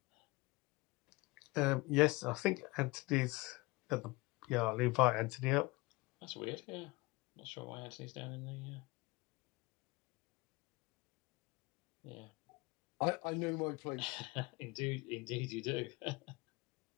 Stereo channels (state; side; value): quieter; right; 23.4 dB